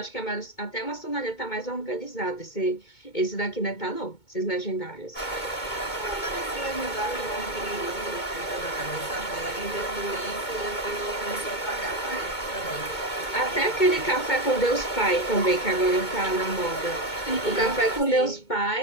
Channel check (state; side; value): late; right; 2.2 ms